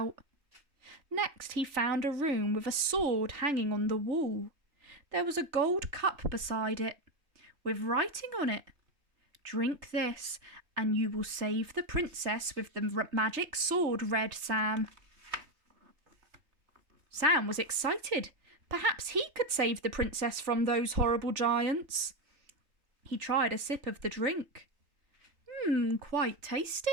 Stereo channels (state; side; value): late; left; 3.2 ms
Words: Next, he found a room with a sword hanging on the wall. There was a gold cup beside it, with writing on it. "Drink this, and you will save the princess with the magic sword," read Sam. Sam was excited. Perhaps he could save the princess from those horrible giants. He tried a sip of the drink. Quite